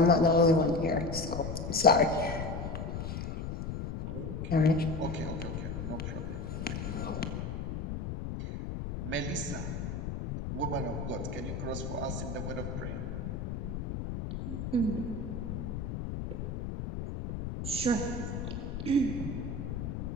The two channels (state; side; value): noise; left; rumble, 4 dB below the sound